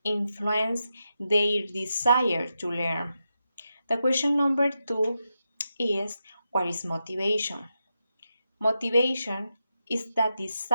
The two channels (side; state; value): both; inverted; correlation -0.87